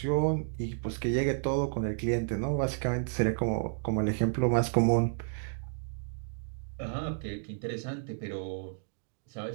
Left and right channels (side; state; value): left; silent; digital silence